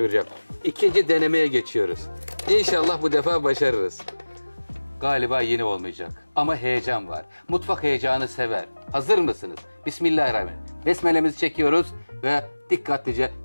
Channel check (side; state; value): both; inverted; correlation -1.00